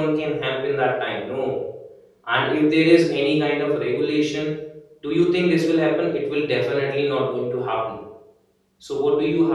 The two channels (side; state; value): both; identical; correlation 1.00